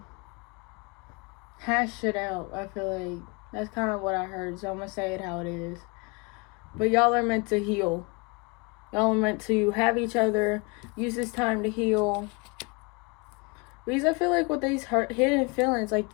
hash shit out. I feel like that's kind of what I heard, so I'm gonna say it how it is. But y'all are meant to heal. Y'all are meant to have each other, use this time to heal. Because I feel like with these hidden feelings, like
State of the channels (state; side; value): quieter; right; 29.8 dB